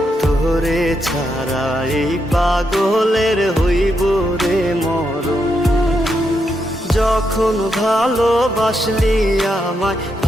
তোরে ছাড়া এই পাগলের হইব রে মরণ। যখন ভালোবাসলি আমায়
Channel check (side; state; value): both; normal; correlation 0.82